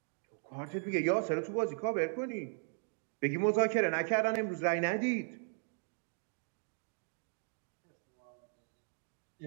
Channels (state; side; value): silent; left; 53 dB below the other